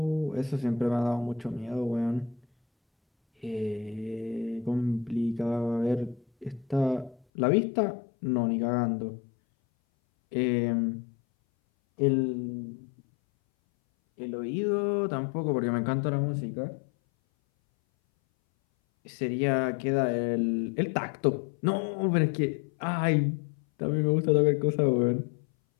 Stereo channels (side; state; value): right; drops out; at 7.2 s